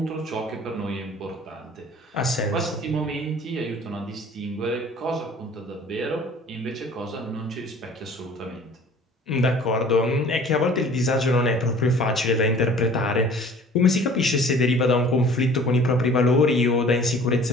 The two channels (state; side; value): normal; both; correlation 0.49